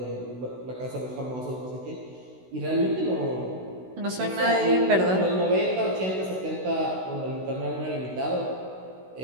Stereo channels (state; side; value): late; left; 16 ms